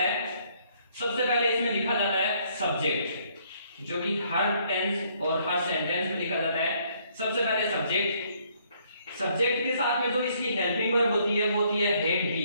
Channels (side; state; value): both; inverted; correlation -0.67